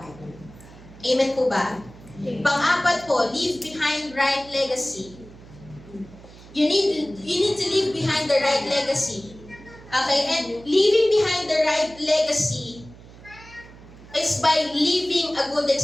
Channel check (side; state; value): right; noise; hum, 20 dB below the sound